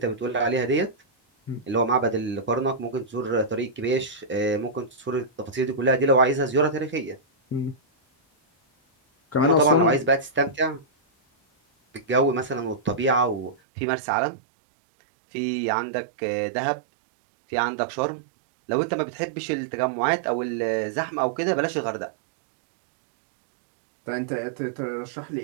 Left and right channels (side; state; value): left; drops out; at 13.6 s